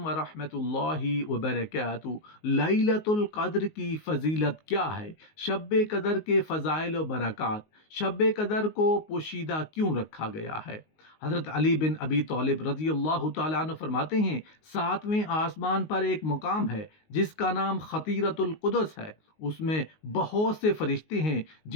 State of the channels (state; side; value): late; right; 19 ms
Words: ورحمۃ اللہ وبرکاتہ۔ لیلۃ القدر کی فضیلت کیا ہے؟ شب قدر کے فضائل و برکات۔ شب قدر کو پوشیدہ کیوں رکھا گیا ہے؟ حضرت علی بن ابی طالب رضی اللہ تعالیٰ عنہ فرماتے ہیں، ساتویں آسمان پر ایک مقام ہے جس کا نام خطیرۃ القدس ہے۔ اس میں بہت سے فرشتے ہیں